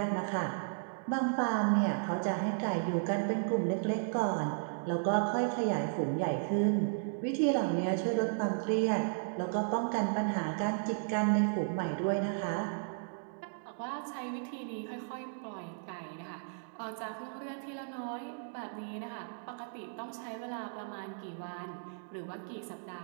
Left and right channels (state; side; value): silent; left; digital silence